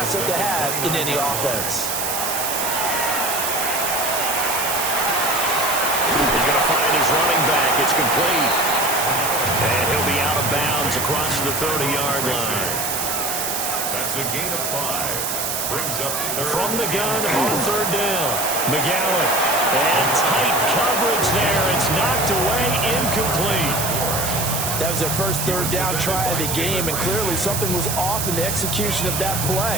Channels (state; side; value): noise; right; hiss, 2 dB below the sound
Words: to have in any offense. He's going to find his running back. It's complete. And he'll be out of bounds across the 30-yard line. That's a gain of 5. Brings up from the gun on 3rd down. McGowan. And tight coverage there. It's knocked away, incomplete. That was their first 3rd down try of the game, and clearly something was off in the execution of that